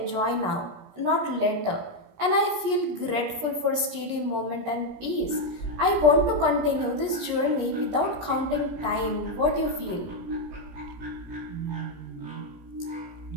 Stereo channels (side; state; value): left; late; 17 ms